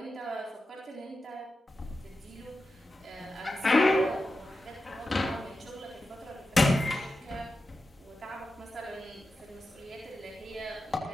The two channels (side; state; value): both; normal; correlation 0.91